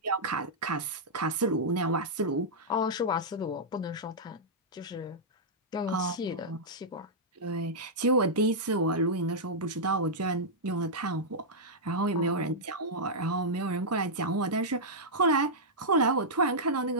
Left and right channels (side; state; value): both; normal; correlation -0.08